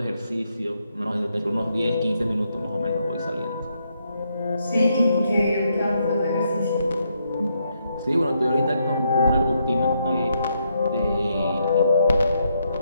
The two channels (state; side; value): inverted; both; correlation -0.78